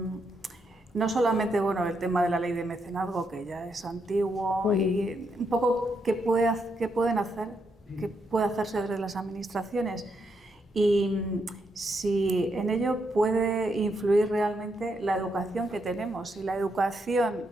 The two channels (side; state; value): both; normal; correlation 0.79